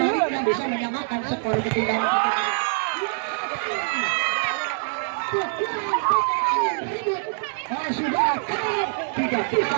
bisa menyamakan skor ketinggalan? Sudah tidak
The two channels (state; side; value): silent; left; digital silence